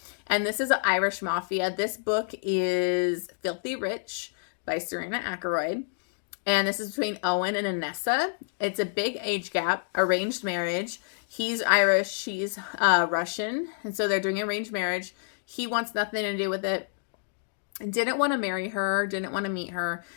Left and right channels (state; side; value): silent; right; digital silence